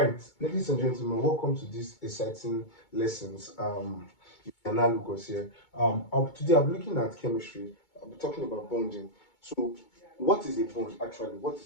ladies and gentlemen, welcome to this exciting lessons. Analogous here. Today I'm looking at chemistry. I'll be talking about bonding. So, what is a bond actually? What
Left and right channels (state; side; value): late; right; 2.2 ms